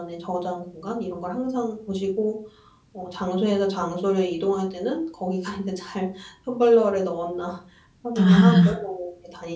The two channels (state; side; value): identical; both; correlation 1.00